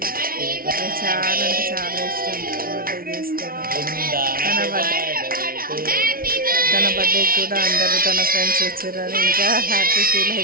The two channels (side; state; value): left; late; 0.43 ms